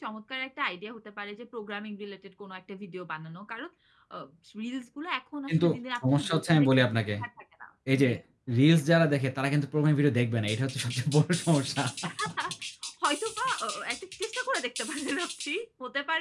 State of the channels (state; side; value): identical; both; correlation 1.00